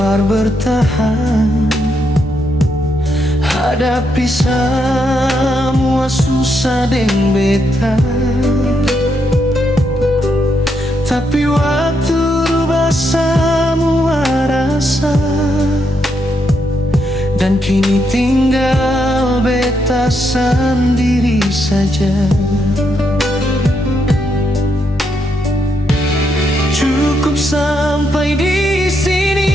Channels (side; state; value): both; normal; correlation 0.79